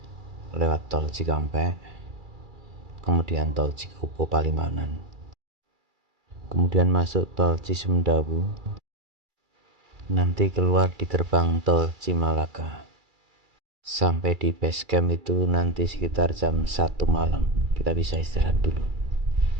lewat tol Cikampek, kemudian tol Cikupo Palimanan, kemudian masuk tol Cisumdawu, nanti keluar di gerbang tol Cimalaka. Sampai di base camp itu nanti sekitar jam 1 malam. Kita bisa istirahat dulu.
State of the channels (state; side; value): late; left; 2.3 ms